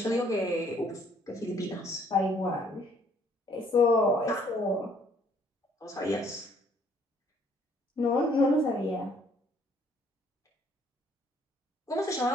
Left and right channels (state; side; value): normal; both; correlation 0.63